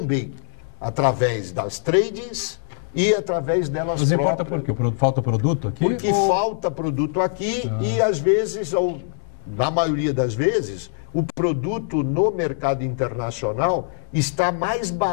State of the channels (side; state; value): right; silent; digital silence